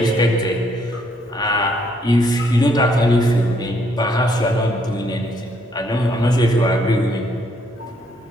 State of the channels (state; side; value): normal; both; correlation 0.70